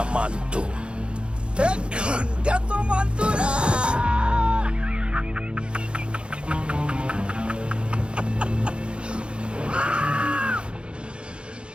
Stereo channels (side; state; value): left; late; 0.055 ms